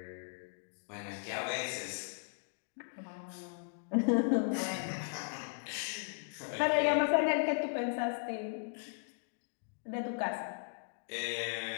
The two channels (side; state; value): right; silent; digital silence